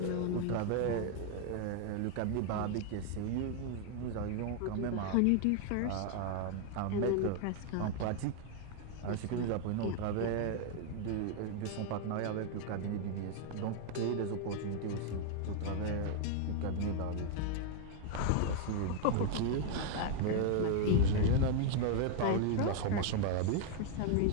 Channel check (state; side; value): different; both; correlation 0.00